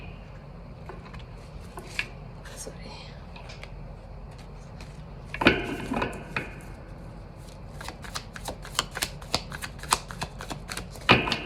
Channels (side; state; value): both; identical; correlation 1.00